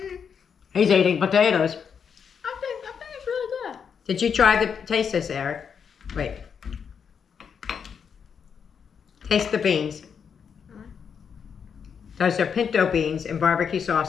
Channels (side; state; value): right; quieter; 6.9 dB